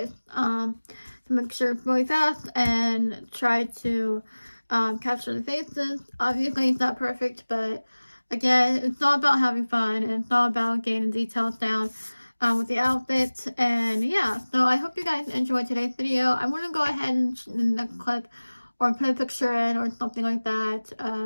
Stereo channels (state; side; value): inverted; both; correlation -1.00